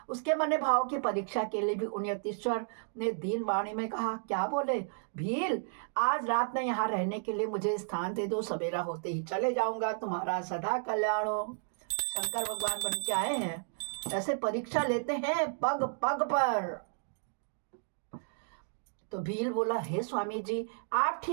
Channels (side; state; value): left; silent; digital silence